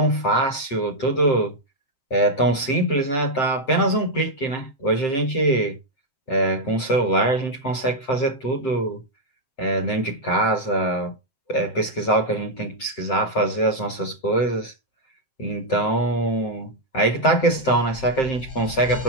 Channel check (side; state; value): right; late; 7.6 ms